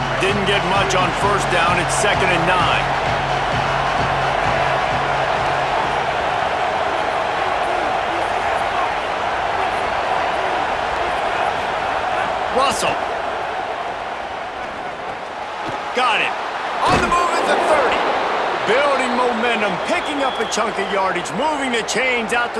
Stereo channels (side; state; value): both; identical; correlation 1.00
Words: Didn't get much on first down. It's 2nd and 9. Russell. Got it. On the move at the 30. Building momentum, picking up a chunk of yardage, moving the chains out